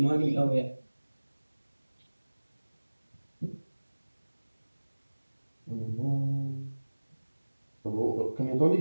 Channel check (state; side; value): inverted; both; correlation -1.00